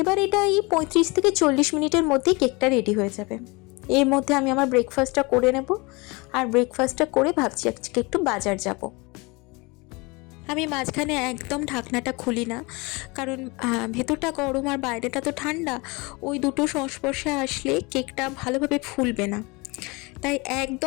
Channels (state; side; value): quieter; right; 26.3 dB